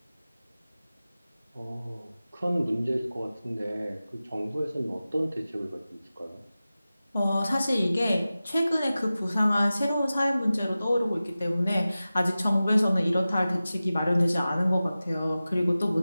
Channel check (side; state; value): both; inverted; correlation -0.96